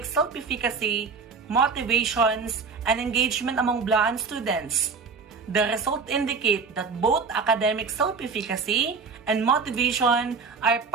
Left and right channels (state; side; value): quieter; left; 5.0 dB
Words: self-efficacy, motivations, and engagement among Blaan students. The results indicate that both academic self-efficacy and motivation are